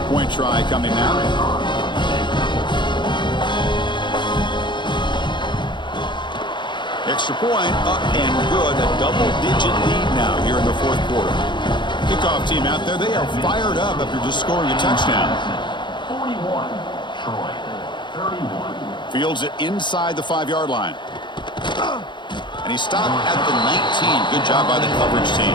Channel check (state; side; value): late; right; 0.23 ms